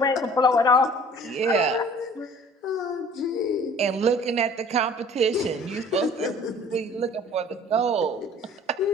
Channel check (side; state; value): both; normal; correlation 0.50